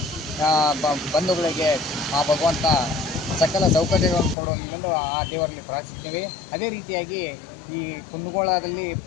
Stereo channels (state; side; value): drops out; right; at 4.4 s